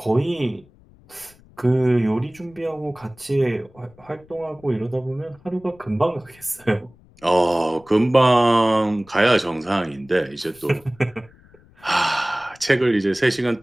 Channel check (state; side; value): noise; left; rumble, 27 dB below the sound